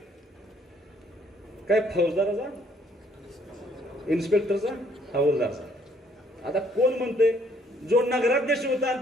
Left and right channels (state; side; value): normal; both; correlation 0.64